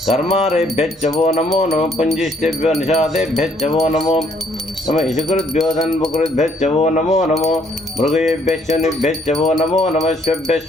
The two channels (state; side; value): normal; both; correlation 0.66